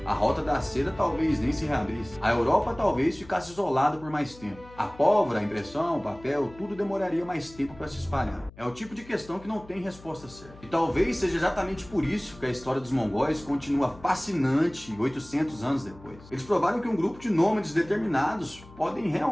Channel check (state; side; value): noise; left; hum, 21 dB below the sound